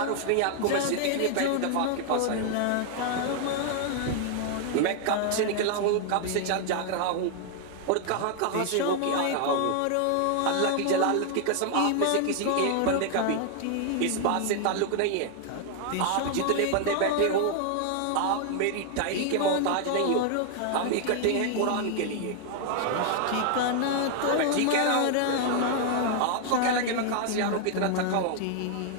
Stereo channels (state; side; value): different; both; correlation 0.00